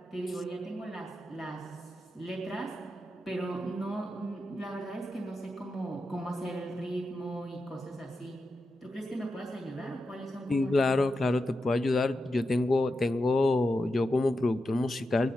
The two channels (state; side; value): normal; both; correlation 0.89